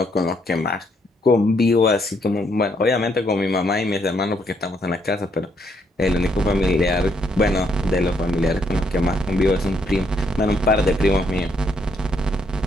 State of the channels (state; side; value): normal; both; correlation 0.73